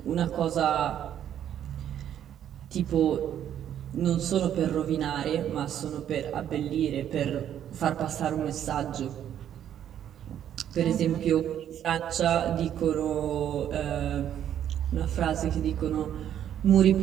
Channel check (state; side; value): quieter; left; 10.2 dB